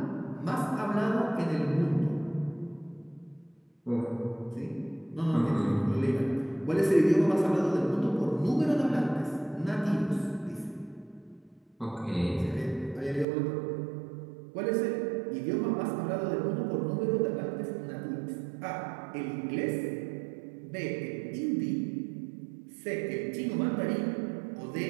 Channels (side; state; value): left; drops out; at 13.2 s